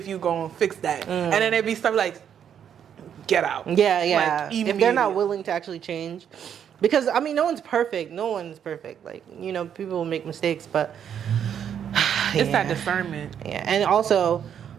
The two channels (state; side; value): quieter; left; 8.7 dB